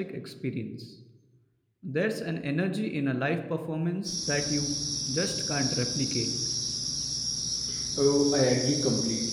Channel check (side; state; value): both; identical; correlation 1.00